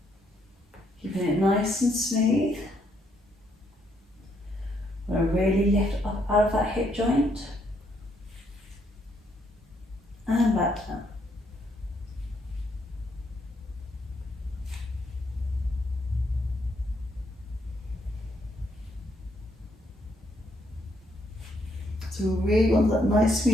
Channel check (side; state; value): both; normal; correlation 0.73